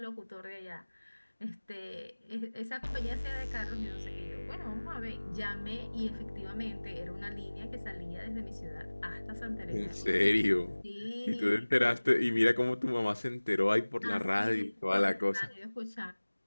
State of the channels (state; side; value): inverted; both; correlation -1.00